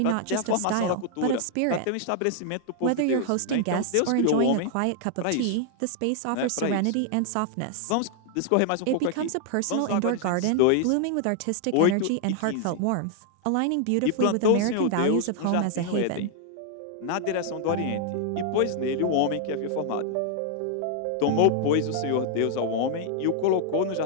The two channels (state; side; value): different; both; correlation 0.00